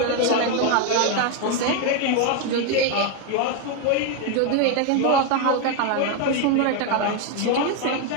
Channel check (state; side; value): different; both; correlation 0.02